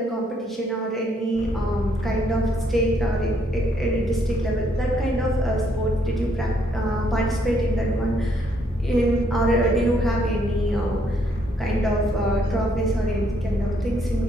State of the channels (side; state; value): both; normal; correlation 0.71